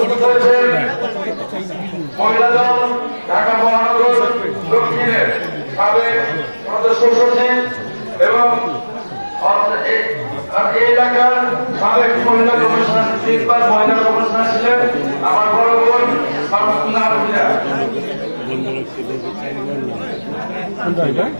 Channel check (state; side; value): inverted; both; correlation -1.00